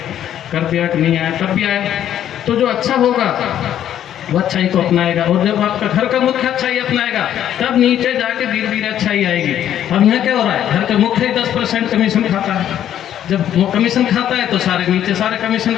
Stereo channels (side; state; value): right; quieter; 10.7 dB